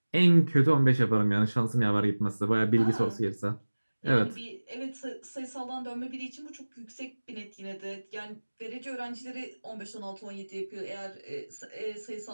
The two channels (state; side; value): inverted; both; correlation -1.00